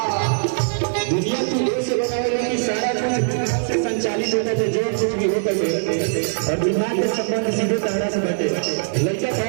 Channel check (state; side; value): silent; left; digital silence